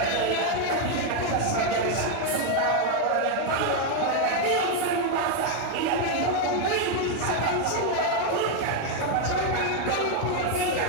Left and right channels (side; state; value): both; different; correlation 0.01